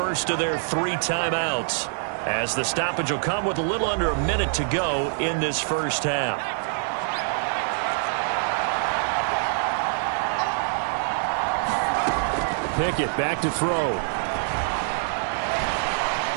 of their 3 timeouts, as the stoppage will come with a little under a minute to go in this first half. Pickett back to throw.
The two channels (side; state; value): left; silent; digital silence